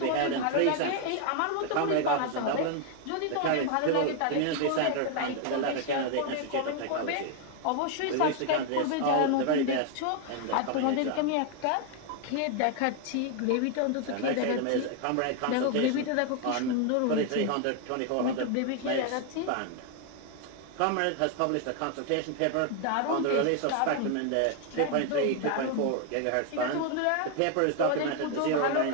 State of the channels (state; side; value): different; both; correlation 0.00